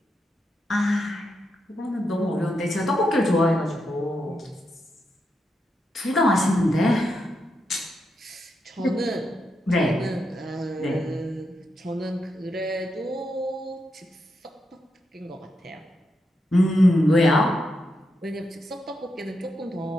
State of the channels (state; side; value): normal; both; correlation 0.84